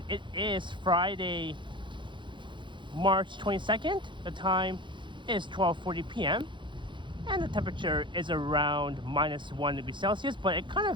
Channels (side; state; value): left; late; 0.23 ms